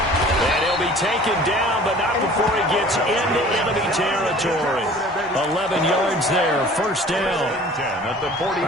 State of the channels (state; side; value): normal; both; correlation 0.47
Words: And he'll be taken down, but not before he gets into enemy territory. 11 yards there, first down. All